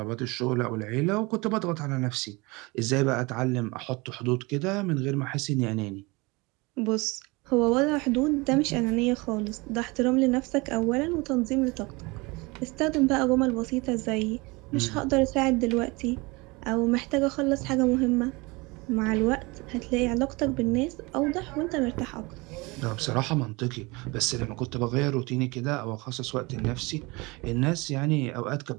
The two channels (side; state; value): left; quieter; 25.2 dB